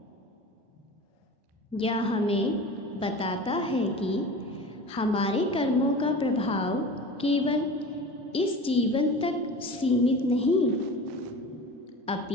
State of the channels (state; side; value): normal; both; correlation 0.35